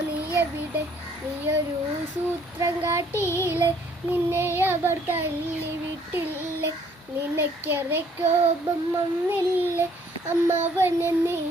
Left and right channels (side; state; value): both; normal; correlation 0.62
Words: നീ എവിടെ, നീയൊരു സൂത്രം കാട്ടിയില്ലേ, നിന്നെ അവർ തള്ളി വിട്ടില്ലേ, നിനക്കേറെ കോപം വന്നില്ലേ, അമ്മാവനെ നീ